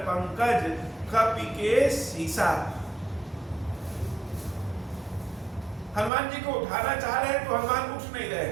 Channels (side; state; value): left; drops out; at 6.1 s